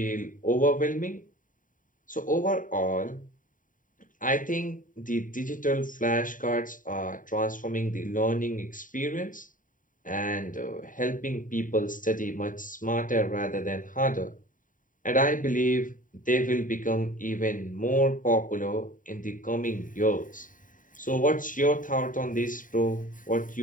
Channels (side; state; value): right; late; 0.39 ms